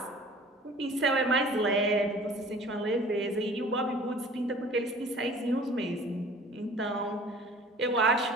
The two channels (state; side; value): normal; both; correlation 0.47